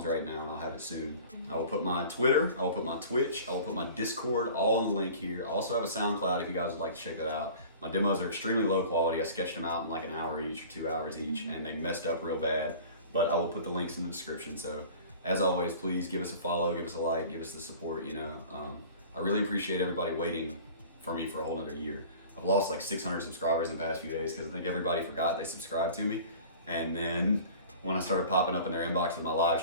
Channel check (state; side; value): inverted; both; correlation -0.43